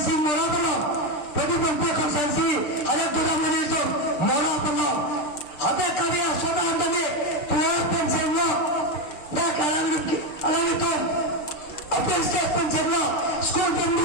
merapalah Bagi bangsa konsensi ada orang menitu mora pulau ada karya soda anda ni tuah pencenglo dah kalau itu apa sih pencenglo skor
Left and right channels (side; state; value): right; late; 6.7 ms